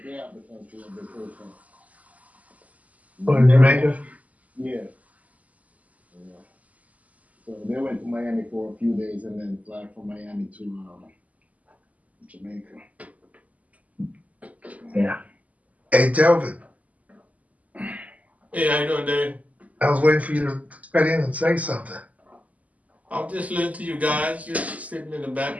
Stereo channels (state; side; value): late; left; 0.073 ms